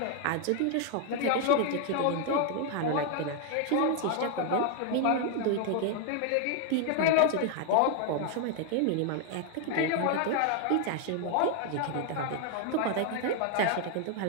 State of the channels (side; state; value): both; different; correlation 0.00